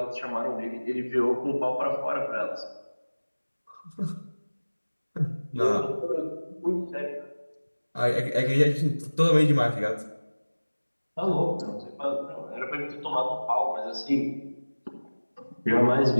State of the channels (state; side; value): inverted; both; correlation -1.00